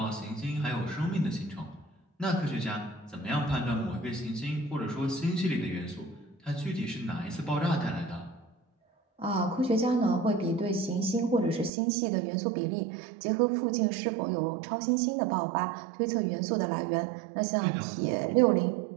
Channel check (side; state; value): left; drops out; at 11.7 s